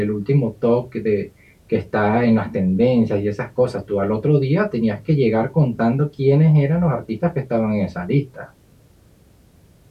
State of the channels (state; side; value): identical; both; correlation 1.00